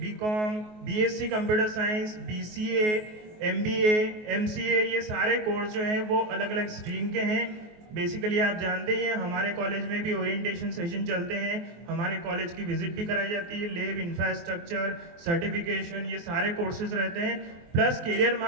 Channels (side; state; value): left; late; 24 ms